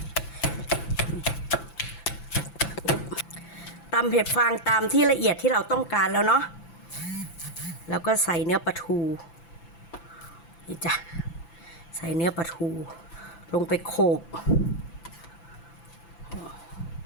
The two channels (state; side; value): late; right; 5.9 ms